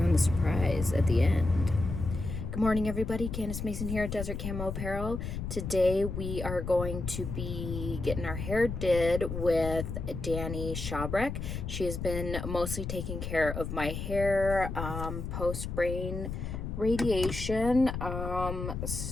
the surprise at the end. Good morning, everybody. Candace Mason here at Desert Camo Apparel. Today we are going to be getting our hair did with Dani Chabrek. She has been mostly taking care of my hair post-brain radiation.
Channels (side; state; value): left; noise; rumble, 5 dB below the sound